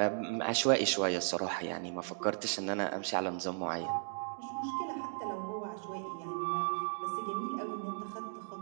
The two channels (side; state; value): left; silent; digital silence